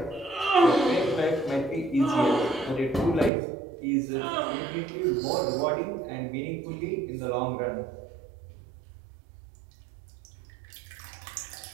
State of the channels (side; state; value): left; drops out; at 3.3 s